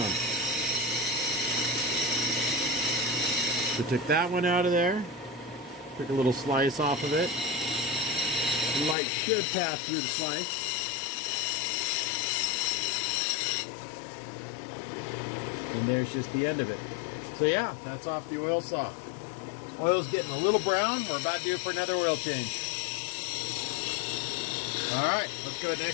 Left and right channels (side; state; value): right; drops out; at 9.0 s